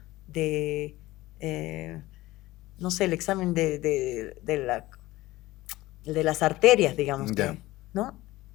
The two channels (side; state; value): right; quieter; 18.1 dB